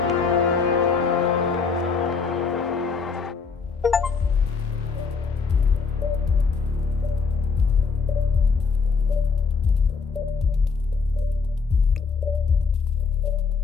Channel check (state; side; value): quieter; right; 5.1 dB